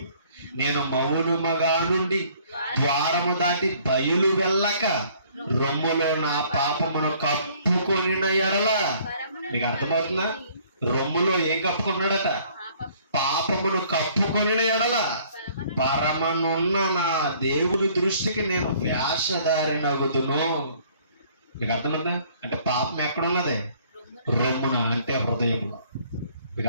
నేను మౌనముగా నుండి ద్వారము దాటి బయలు వెళ్ళక రొమ్ములో నా పాపమును కప్పుకొనిన ఎడల. మీకు అర్థమవుతుందా? రొమ్ములో ఏం కప్పుకున్నాడట? పాపమును కప్పుకొని ఎడల పరమనున్న నా దేవుని దృష్టికి నేను వేషధారినగుదును. మీకు అర్థమైందా? అంటే పాపం ఎక్కడున్నది? రొమ్మున, అంటే హృదయంలో. మీకు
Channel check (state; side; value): inverted; both; correlation -0.58